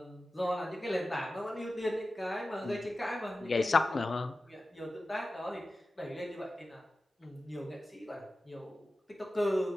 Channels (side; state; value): both; normal; correlation 0.94